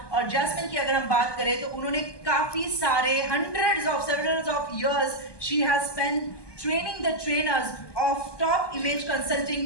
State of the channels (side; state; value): right; late; 1.2 ms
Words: और जैस्मिन की अगर हम बात करें तो उन्होंने काफी सारे several of years she has spent training the trainers of top image